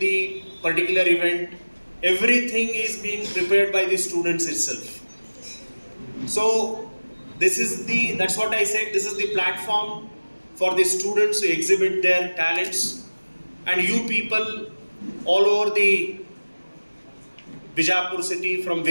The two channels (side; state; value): both; inverted; correlation -1.00